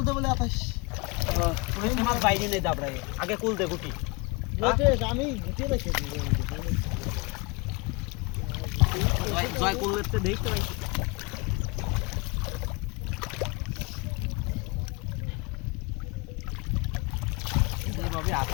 দে বলে আতাস ওই মাছ বাইরে নেই দাবড়াই আগে কোল দে গুটি আমি গুটি রেখেছি জয় করতে দেখতে ভাই এইভাবে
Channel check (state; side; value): quieter; right; 27.6 dB